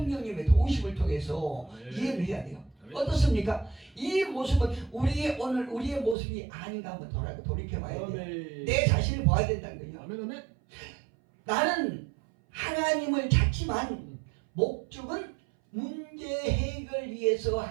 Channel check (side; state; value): left; drops out; at 6.2 s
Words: 도우심을 통해서 이해를 해야 돼요. 어떻습니까? 이 모습은 우리의 모습이 아닌가 한번 돌이켜봐야 돼요. 내 자신을 봐야 된다는 거예요. 나는 하나님을 찾지만 목적은 문제 해결 위해서